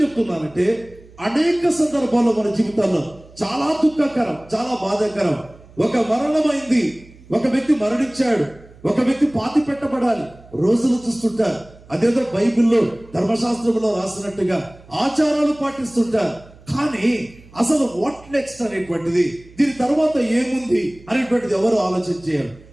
చెప్తున్నానంటే అనేక సందర్భాల్లో మన జీవితాల్లో చాలా దుఃఖకరం, చాలా బాధాకరం. ఒక మరణమైంది, ఒక వ్యక్తి మరణించాడు, ఒక వ్యక్తి పాతి పెట్టబడాలి, రోజులు చూస్తుంటారు. అదేదో బైబిల్లో ధర్మశాస్త్రంలో రాసినట్టుగా ఆచారాలు పాటిస్తుంటారు. కానీ అసలు వాట్ నెక్స్ట్ అనేటువంటిది, దీని తర్వాత ఏముంది అనేటువంటిది ఎవరు ఆలోచన చేయాలి.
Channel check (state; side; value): noise; right; hum, 24 dB below the sound